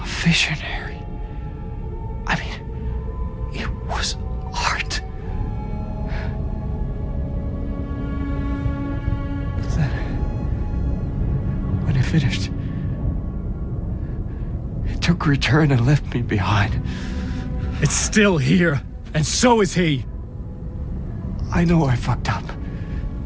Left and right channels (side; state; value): both; identical; correlation 1.00